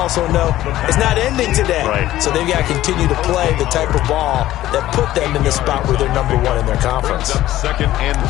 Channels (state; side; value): quieter; right; 14.5 dB